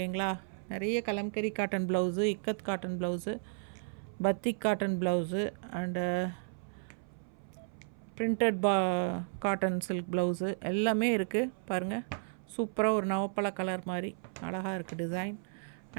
நிறைய Kalamkari cotton blouse, ikat cotton blouse, batik cotton blouse and printed cotton silk blouse எல்லாமே இருக்குது. பாருங்கள், சூப்பராக ஒரு நவப்பழ கலர் மாதிரி அழகாக இருக்குது டிசைன்.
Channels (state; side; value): silent; left; 55 dB below the other